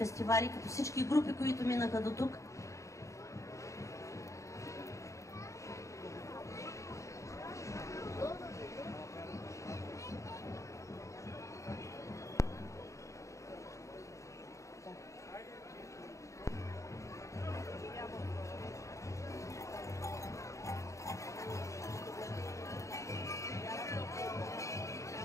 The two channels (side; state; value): right; late; 0.15 ms